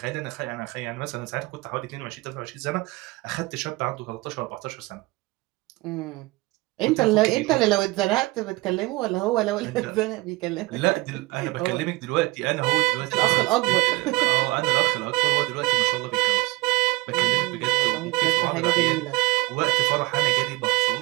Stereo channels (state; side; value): quieter; left; 21.8 dB